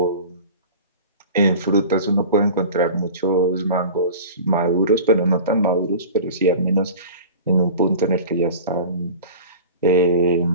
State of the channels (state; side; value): inverted; both; correlation -0.36